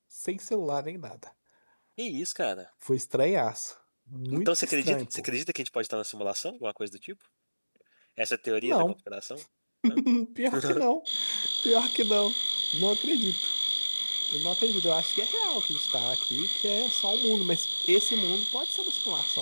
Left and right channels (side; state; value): both; inverted; correlation -1.00